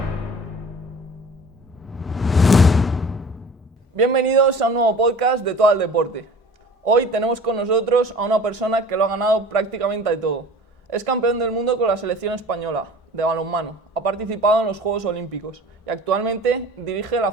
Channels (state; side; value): normal; both; correlation 0.43